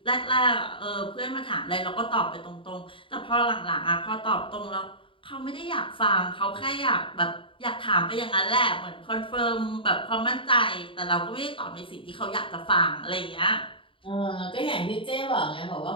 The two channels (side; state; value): right; late; 0.25 ms